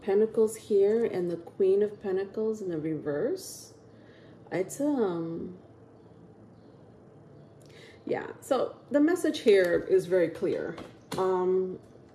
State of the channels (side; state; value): both; identical; correlation 1.00